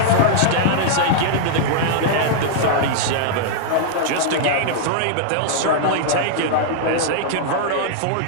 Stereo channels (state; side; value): different; both; correlation -0.01